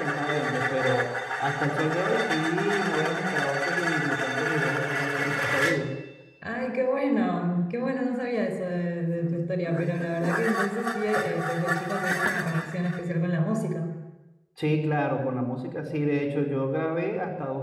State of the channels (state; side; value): identical; both; correlation 1.00